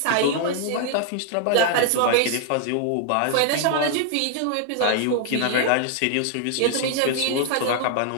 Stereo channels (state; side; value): different; both; correlation 0.00